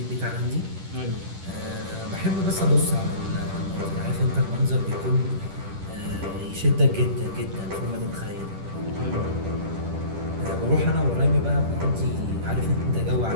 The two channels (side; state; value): left; late; 10 ms